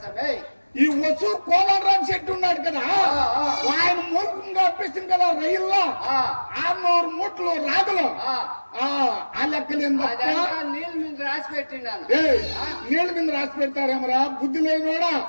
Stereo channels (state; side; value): inverted; both; correlation -1.00